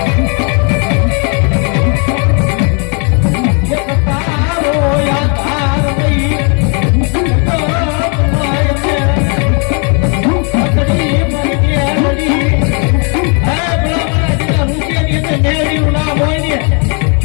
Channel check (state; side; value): quieter; right; 37.3 dB